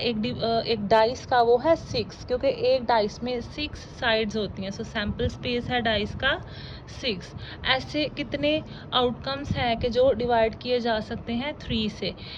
एक डाइस का वो है 6, क्योंकि एक डाइस में 6 साइड्स होती हैं। सो सैम्पल स्पेस है डाइस का 6। ऐसे कितने आउटकम्स हैं कि जो डिवाइड किए जा सकते हैं 3 से।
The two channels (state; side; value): identical; both; correlation 1.00